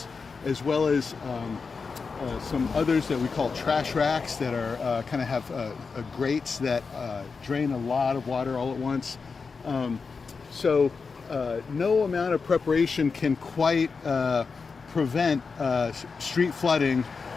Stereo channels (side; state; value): right; quieter; 4.9 dB